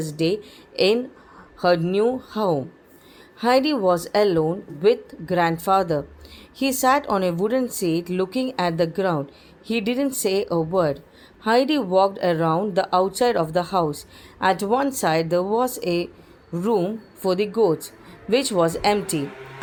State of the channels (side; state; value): both; identical; correlation 1.00